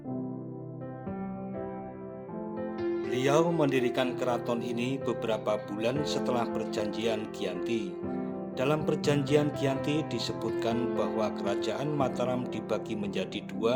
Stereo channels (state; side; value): identical; both; correlation 1.00